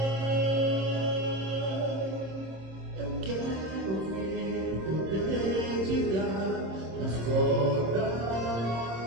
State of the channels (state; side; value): late; left; 26 ms